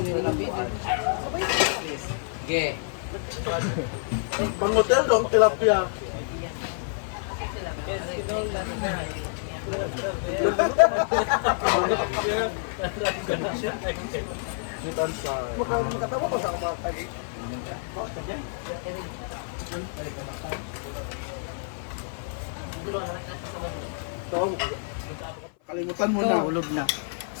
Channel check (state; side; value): silent; right; 55 dB below the other